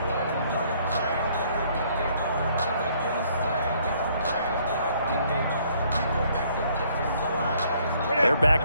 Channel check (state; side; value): inverted; both; correlation -0.64